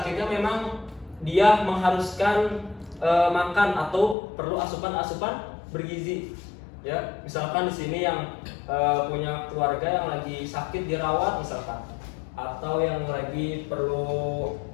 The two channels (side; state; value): right; drops out; at 4.2 s